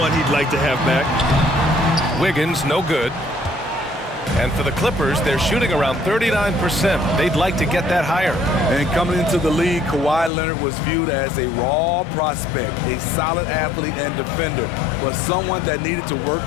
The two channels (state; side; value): drops out; right; at 10.3 s